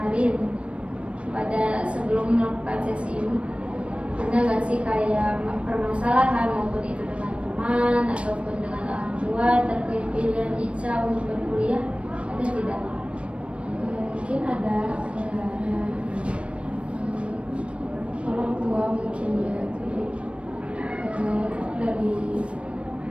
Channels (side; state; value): left; late; 0.060 ms